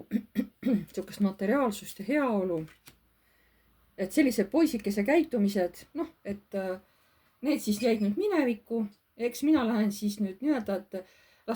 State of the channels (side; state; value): both; identical; correlation 1.00